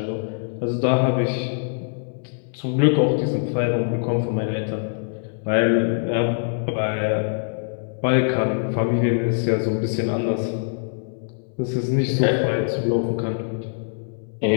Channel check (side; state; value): right; silent; 63 dB below the other